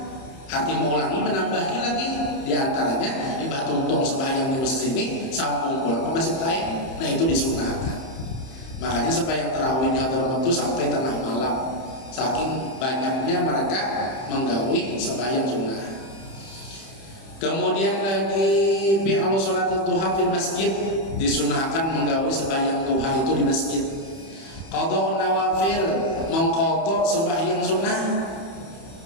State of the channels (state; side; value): late; right; 31 ms